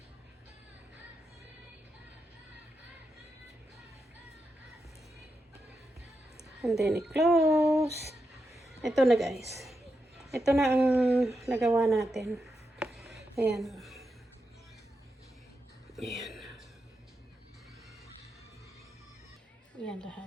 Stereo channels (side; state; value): both; normal; correlation 0.87